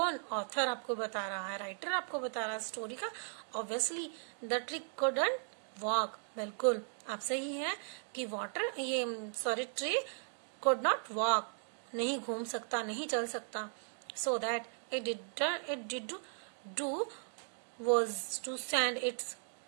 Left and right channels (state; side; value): silent; left; 53 dB below the other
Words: ऑथर आपको बता रहा है, राइटर आपको बता रहा है स्टोरी का। Obviously the tree couldn't walk, बिल्कुल आप सही है कि ट्री कुड नॉट वॉक, नहीं घूम सकता, नहीं चल सकता। So that it did do was to send its